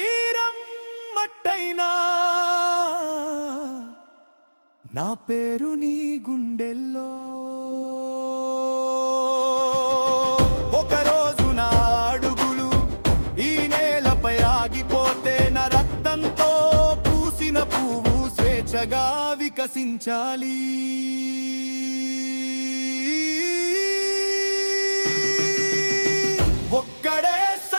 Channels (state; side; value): inverted; both; correlation -1.00